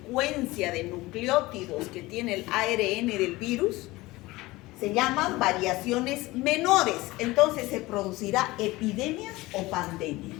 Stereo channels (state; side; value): quieter; right; 20.0 dB